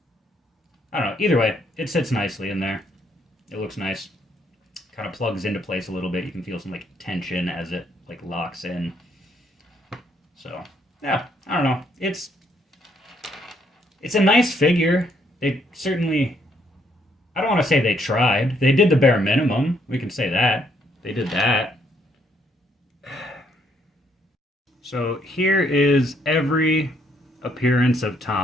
I don't know. Either way, it sits nicely in there. It looks nice. Kind of plugs into place a little bit. You can feel some like tension as it like locks in. So yeah, I don't know. It's a nice figure. They certainly, I don't want to say they tried. They did the bare minimum. We can say that. They did that. So here is every appearance of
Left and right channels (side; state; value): both; normal; correlation 0.70